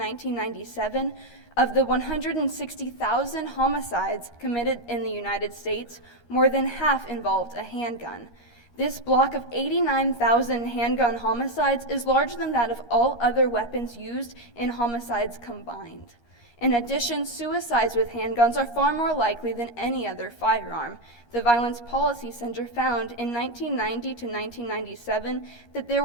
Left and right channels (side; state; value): right; late; 13 ms